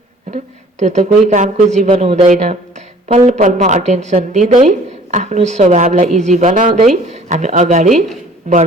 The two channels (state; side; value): normal; both; correlation 0.52